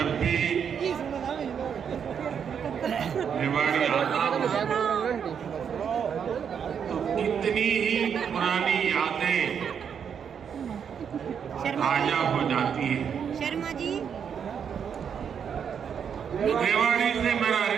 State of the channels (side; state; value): left; quieter; 7.5 dB